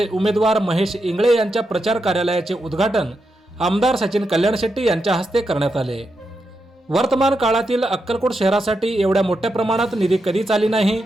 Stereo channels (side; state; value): both; normal; correlation 0.85